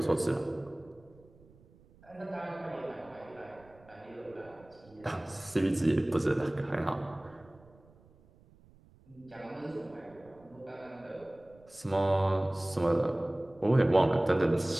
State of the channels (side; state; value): right; noise; rumble, 27 dB below the sound